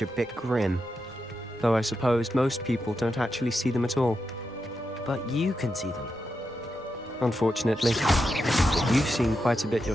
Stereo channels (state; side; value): normal; both; correlation 0.87